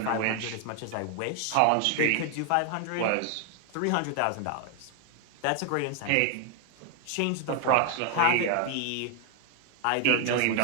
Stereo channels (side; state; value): both; different; correlation 0.00